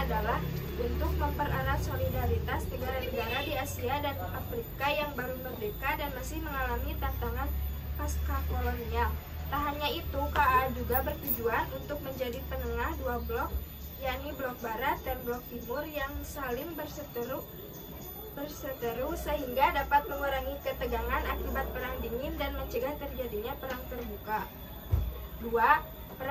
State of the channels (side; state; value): both; identical; correlation 1.00